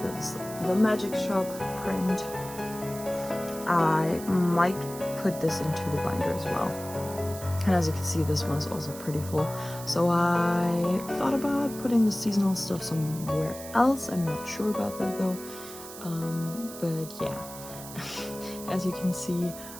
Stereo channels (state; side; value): noise; right; hiss, 13 dB below the sound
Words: This is the Magic Shop print. I might put this into the binder as well, and as you can see, this one is also pretty full, so I thought about putting the seasonal stuff somewhere else. I'm not sure about that though, but yeah. As you can see,